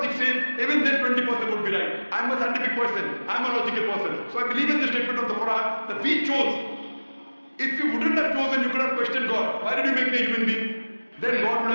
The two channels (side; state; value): both; inverted; correlation -1.00